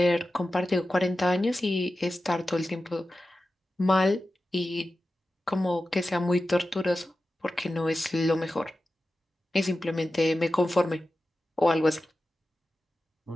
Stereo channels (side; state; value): both; normal; correlation 0.93